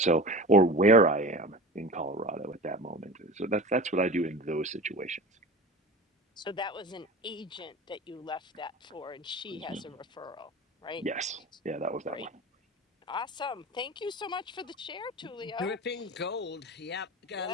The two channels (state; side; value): normal; both; correlation 0.33